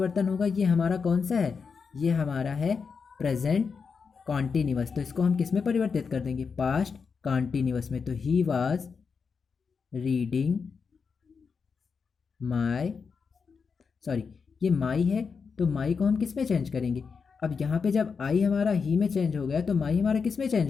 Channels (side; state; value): right; quieter; 5.5 dB